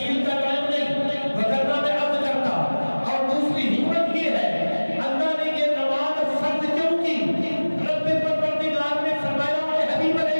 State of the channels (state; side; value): inverted; both; correlation -1.00